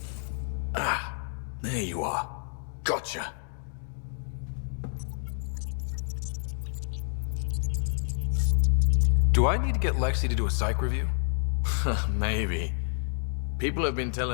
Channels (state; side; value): silent; right; digital silence